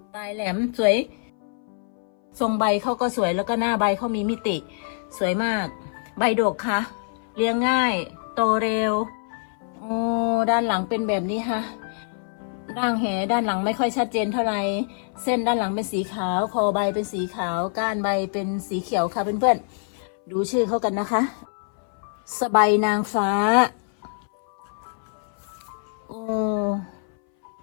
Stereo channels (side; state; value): right; silent; 60 dB below the other